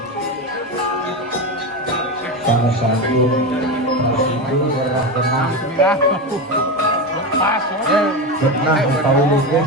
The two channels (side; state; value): both; normal; correlation 0.18